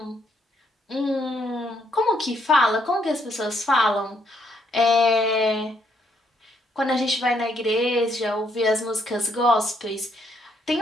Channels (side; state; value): both; normal; correlation 0.72